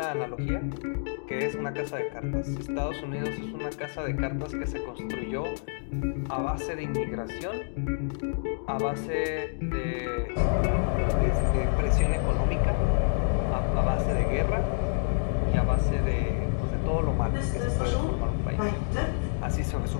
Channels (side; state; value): right; silent; digital silence